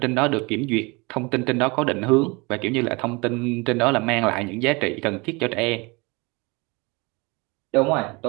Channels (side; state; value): left; quieter; 26.7 dB